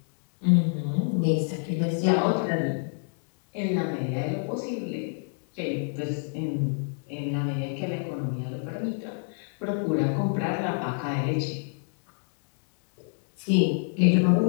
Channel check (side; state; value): right; silent; 59 dB below the other